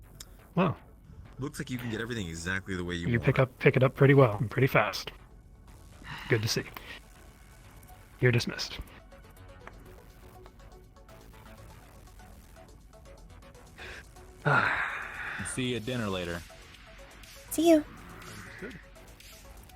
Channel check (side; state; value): both; identical; correlation 1.00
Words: Wow. Looks like you can get everything exactly the way you You want. pick it up pretty well, and pretty fast. Good to see. You're dismissed. See you at dinner later. See you.